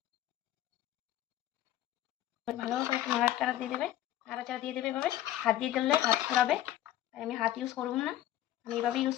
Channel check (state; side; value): quieter; right; 13.1 dB